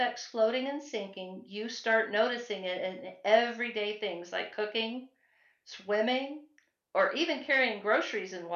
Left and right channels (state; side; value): identical; both; correlation 1.00